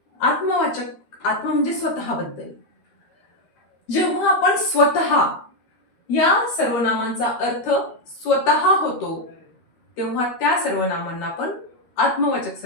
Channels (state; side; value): late; right; 13 ms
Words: आत्मवाचक, आत्म म्हणजे स्वतःबद्दल. जेव्हा आपण स्वतः या सर्वनामांचा अर्थ स्वतः होतो तेव्हा त्या सर्वनामांना आपण आत्मवाचक